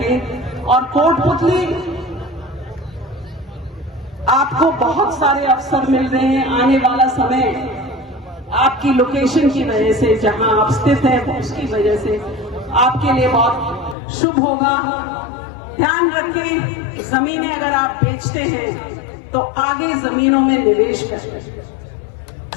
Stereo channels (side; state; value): right; drops out; at 14.0 s